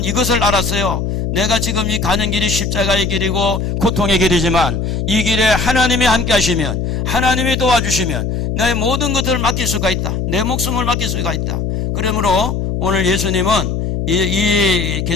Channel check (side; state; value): left; noise; hum, 1 dB below the sound